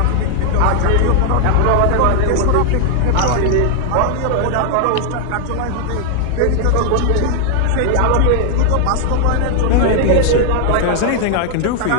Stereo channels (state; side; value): different; both; correlation 0.00